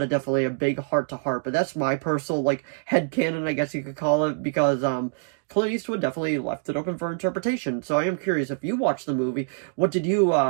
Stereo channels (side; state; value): left; silent; digital silence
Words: definitely a big heart-to-heart. But that's my personal, like, headcanon, I guess you could call it, because Clint Eastwood definitely left it open for interpretation. So I am curious, if you watched the movie, what did you